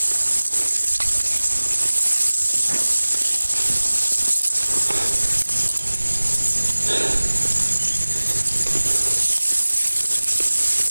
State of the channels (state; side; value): inverted; both; correlation -1.00